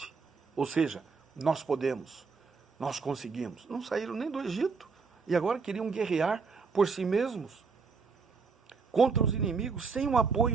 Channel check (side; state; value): left; quieter; 4.9 dB